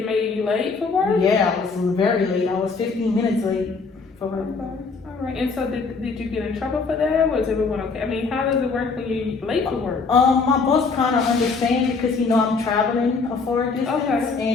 made you late for work? Yeah, I was very late. I was 15 minutes late for work. Okay. All right, and so did you get in trouble for that? Was everyone okay? I mean, how does it work when you're late for work? My boss kind of understands because he know I'm traveling a far distance,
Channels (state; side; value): quieter; right; 4.5 dB